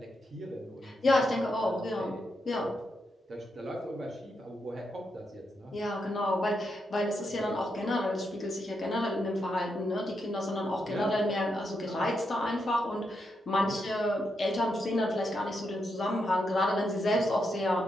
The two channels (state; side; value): normal; both; correlation 0.83